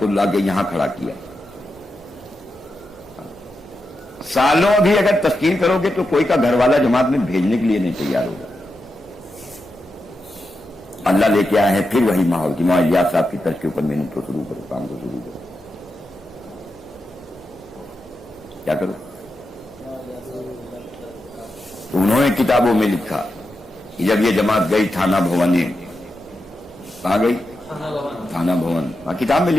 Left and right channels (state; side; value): normal; both; correlation 0.88